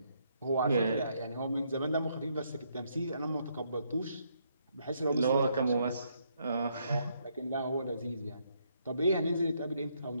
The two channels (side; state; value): both; inverted; correlation -0.74